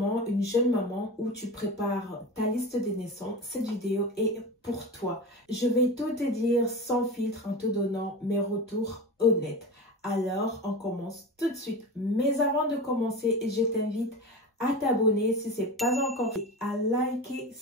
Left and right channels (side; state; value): both; normal; correlation 0.28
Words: une jeune maman ou tu prépares ta liste de naissance, cette vidéo est pour toi. Je vais tout te dire sans filtre en te donnant mes retours honnêtes. Alors, on commence tout de suite. Mais avant de commencer, je t'invite à t'abonner si ce n'est pas encore fait, à liker